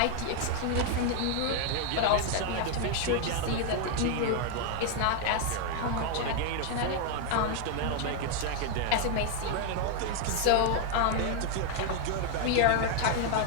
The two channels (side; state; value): both; different; correlation 0.00